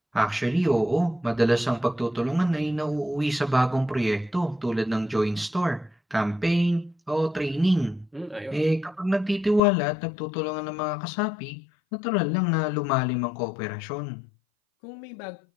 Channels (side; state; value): right; drops out; at 9.6 s